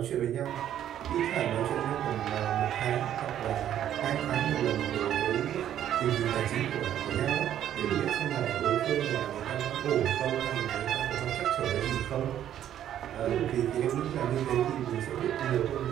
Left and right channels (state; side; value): quieter; left; 10.9 dB